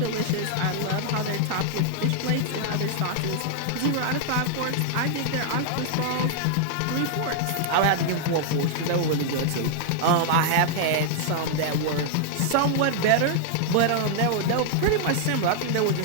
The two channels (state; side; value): different; both; correlation 0.00